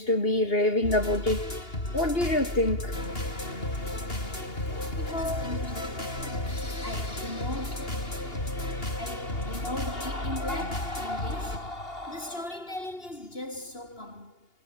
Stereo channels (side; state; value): right; late; 2.8 ms